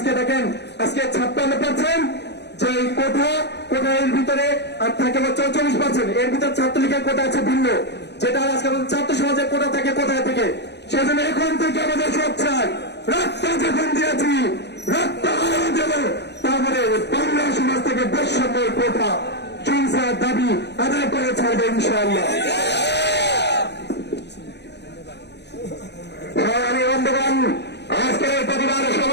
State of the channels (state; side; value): late; right; 0.50 ms